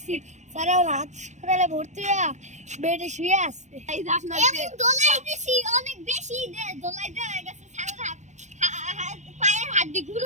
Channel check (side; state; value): left; late; 0.34 ms